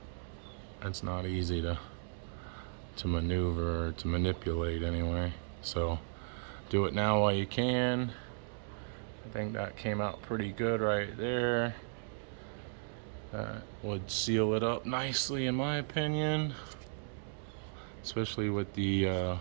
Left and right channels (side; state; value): left; silent; digital silence